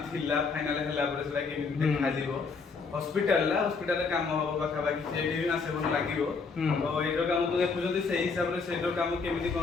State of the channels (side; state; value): right; quieter; 4.8 dB